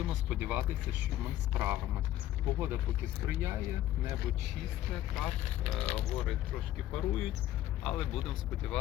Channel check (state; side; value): quieter; right; 13.4 dB